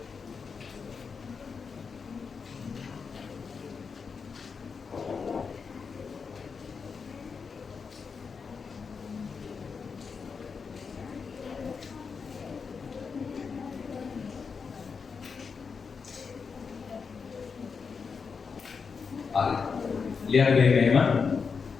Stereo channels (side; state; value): right; quieter; 5.5 dB